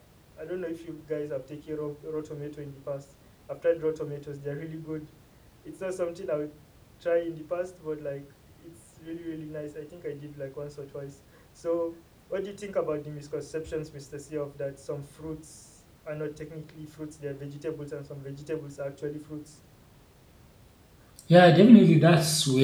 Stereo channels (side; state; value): both; identical; correlation 1.00